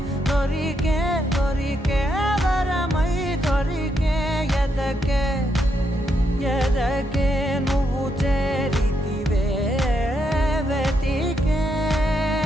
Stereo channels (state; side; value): normal; both; correlation 0.79